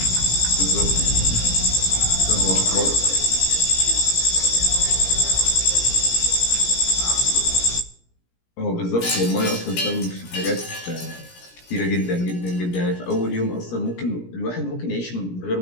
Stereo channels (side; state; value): right; late; 17 ms